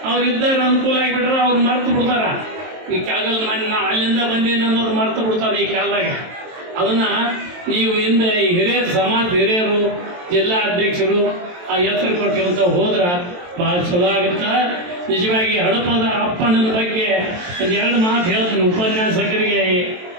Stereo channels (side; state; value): left; late; 23 ms